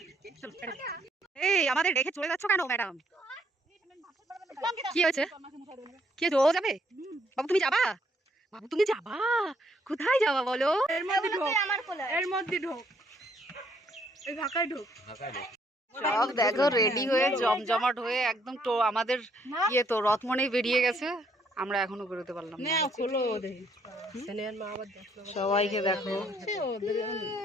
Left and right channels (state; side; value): normal; both; correlation 0.68